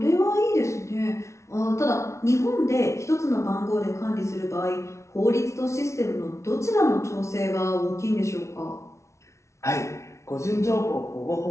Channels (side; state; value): right; late; 0.14 ms